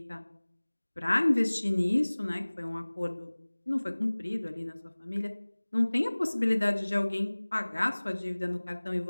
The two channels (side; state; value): both; inverted; correlation -1.00